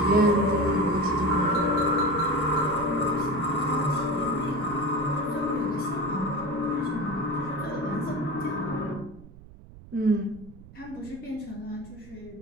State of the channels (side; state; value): right; noise; rumble, 19 dB below the sound